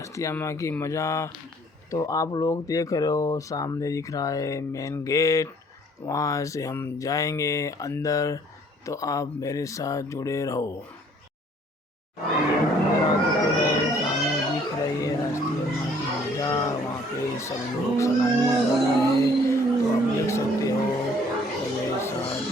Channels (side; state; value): both; normal; correlation 0.59